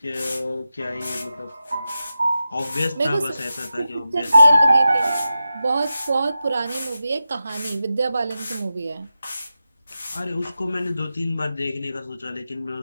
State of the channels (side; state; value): both; inverted; correlation -0.92